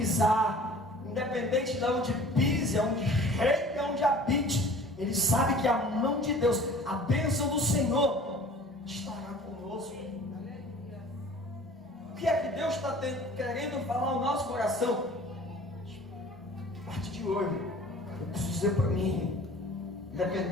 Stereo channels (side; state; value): both; normal; correlation 0.47